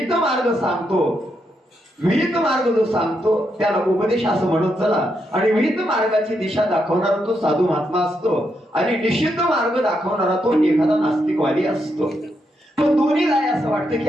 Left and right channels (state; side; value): normal; both; correlation 0.81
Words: मार्ग सांगतो, विहित मार्ग जो सांगतो त्याला उपदेश असं म्हणत चला. आणि विहित मार्गाची दिशा दाखवणारा तो साधू महात्मा असतो आणि निषिद्ध मार्ग दाखवणारा तो एखादा नास्तिकवादी असतो. तो दोन्हीला असं वाटतं